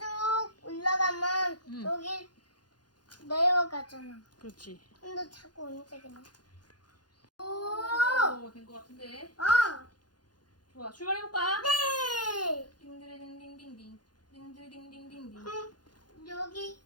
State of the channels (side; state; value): right; late; 0.70 ms